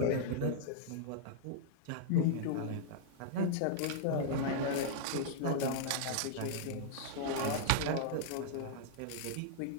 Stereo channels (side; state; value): both; different; correlation -0.01